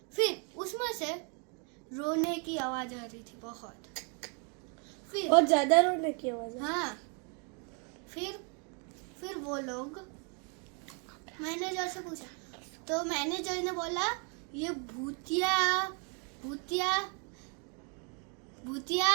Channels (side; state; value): left; quieter; 37.3 dB